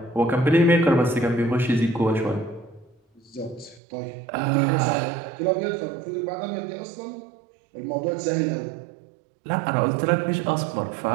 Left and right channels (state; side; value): drops out; left; at 3.8 s